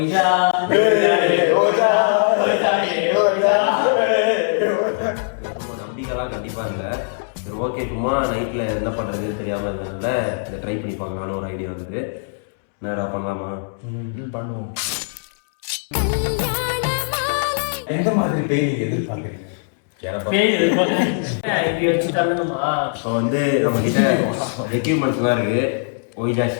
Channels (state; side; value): silent; right; 65 dB below the other